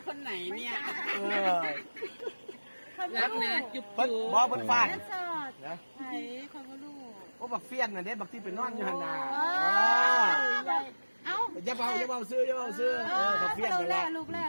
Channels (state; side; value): inverted; both; correlation -1.00